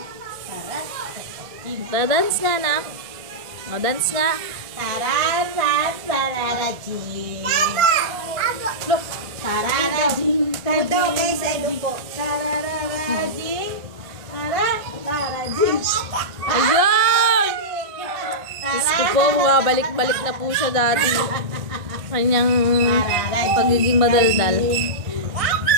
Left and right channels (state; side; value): late; left; 1.6 ms